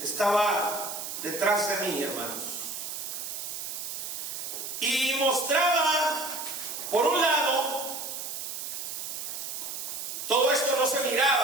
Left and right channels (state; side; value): noise; right; hiss, 6 dB below the sound